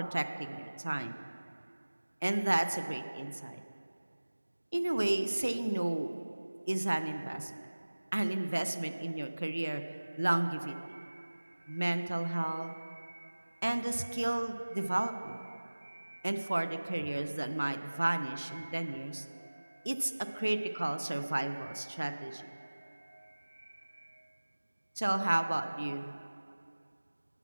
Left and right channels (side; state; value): both; inverted; correlation -1.00